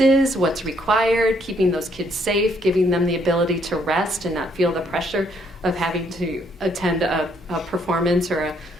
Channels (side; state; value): both; normal; correlation 0.69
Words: what's required, keeping those kids safe, giving them the ability to rest and not feel the pressure of having to attend a performance or